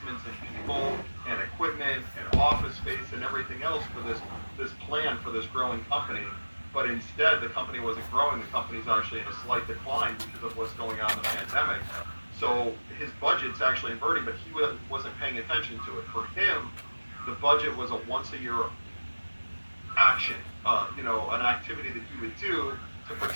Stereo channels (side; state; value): both; inverted; correlation -1.00